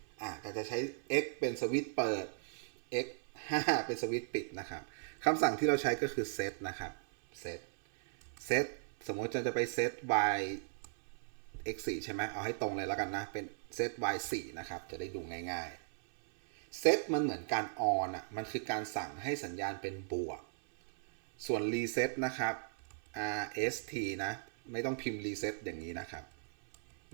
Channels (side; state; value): left; silent; 53 dB below the other